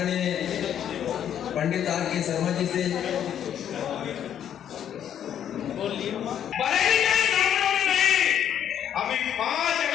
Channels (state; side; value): quieter; right; 9.7 dB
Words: पंडित आर.के. शर्मा जी से। अभी 5